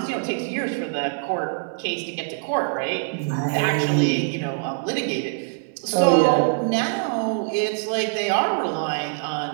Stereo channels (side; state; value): left; silent; 63 dB below the other